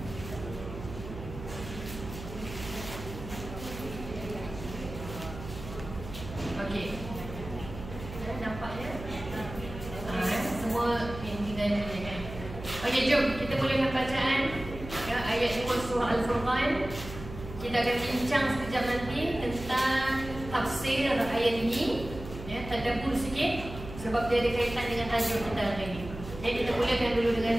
Okey. Nampaknya semua yang tinggal ni kan. Okey, jom kita mulakan bacaan ya, ayat 2 surah Al-Furqan. Kita akan bincang sekejap nanti tentang tafsir ayat ini. Ya, tadabbur sikit sebab dia ada kaitan dengan tajuk kita hari ini. Jadi kita mulakan dulu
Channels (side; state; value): right; noise; hum, 11 dB below the sound